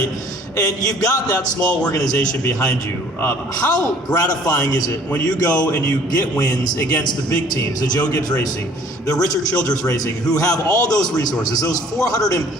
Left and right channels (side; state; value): both; normal; correlation 0.54